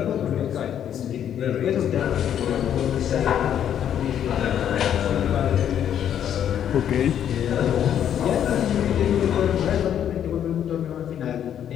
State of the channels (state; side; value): quieter; right; 9.7 dB